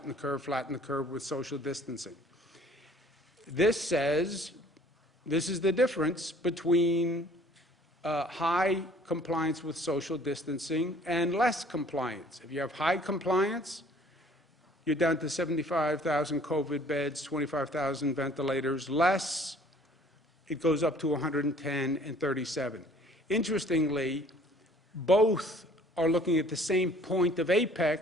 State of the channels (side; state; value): both; normal; correlation 0.55